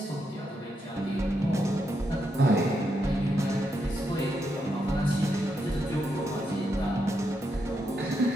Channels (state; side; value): normal; both; correlation 0.82